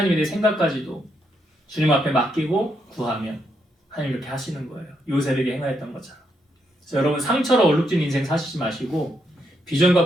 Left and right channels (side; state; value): both; normal; correlation 0.78